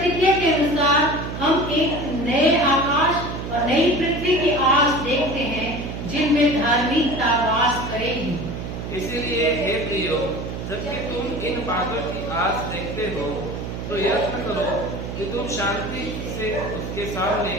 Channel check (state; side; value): noise; right; hum, 6 dB below the sound